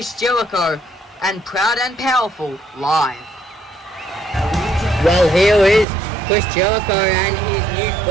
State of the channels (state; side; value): drops out; left; at 5.9 s